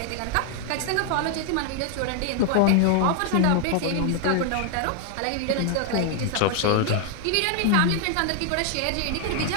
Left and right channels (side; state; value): both; different; correlation 0.00